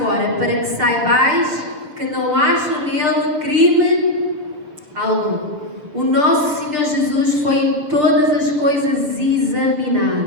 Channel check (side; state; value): left; late; 6.6 ms